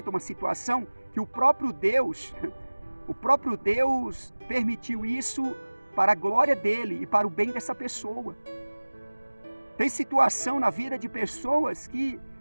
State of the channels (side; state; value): both; inverted; correlation -1.00